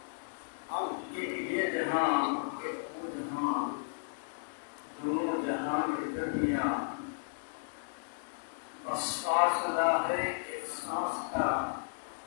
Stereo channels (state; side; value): silent; right; digital silence